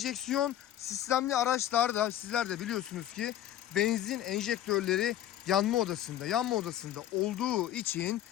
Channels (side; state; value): right; quieter; 12.1 dB